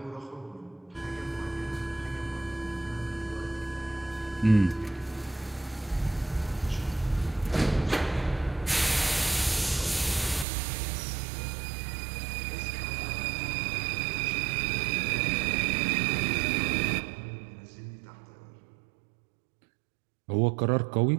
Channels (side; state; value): left; drops out; at 10.5 s